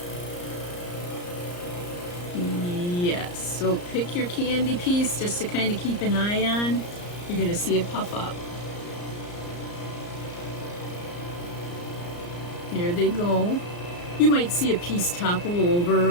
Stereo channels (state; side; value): late; right; 34 ms